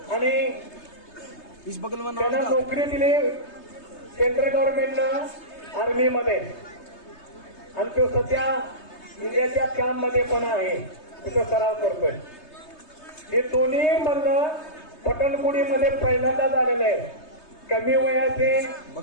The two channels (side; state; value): right; late; 3.3 ms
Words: आणि त्यांना नोकरी दिली सेंट्रल गव्हर्नमेंटनं आर्मीमध्ये. आणि तो सध्या इंडियाच्या कॅम्पमध्ये पण आहे, तिथं सराव करतोय. हे दोन्ही म्हणणं पटणपुडीमध्ये पहिल्यांदा झालेलं आहे. कमी वयाचे